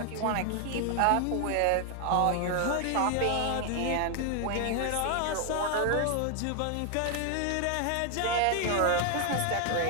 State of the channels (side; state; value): both; different; correlation 0.00